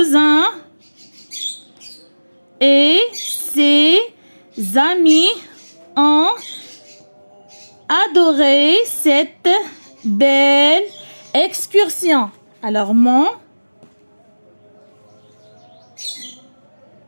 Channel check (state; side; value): inverted; both; correlation -1.00